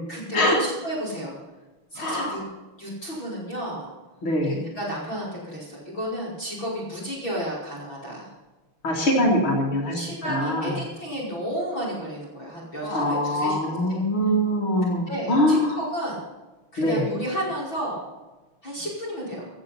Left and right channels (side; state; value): right; late; 6.0 ms